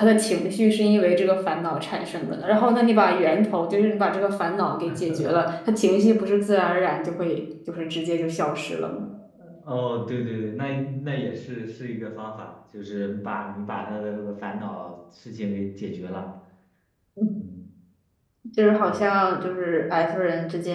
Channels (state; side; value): identical; both; correlation 1.00